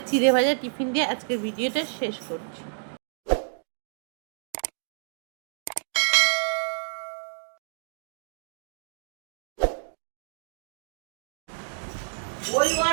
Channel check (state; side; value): silent; left; digital silence